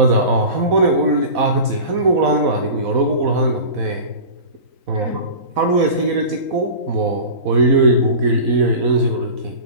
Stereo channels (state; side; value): late; left; 4.1 ms